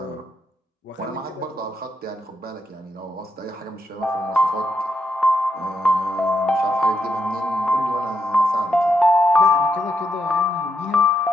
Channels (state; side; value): normal; both; correlation 0.81